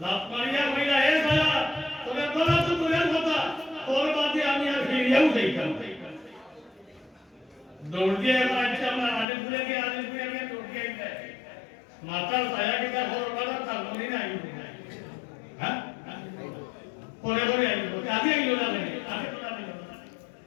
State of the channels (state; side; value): drops out; right; at 9.2 s